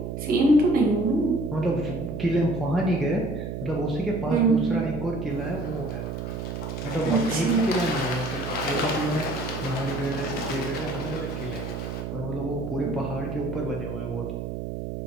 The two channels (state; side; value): noise; right; hum, 5 dB below the sound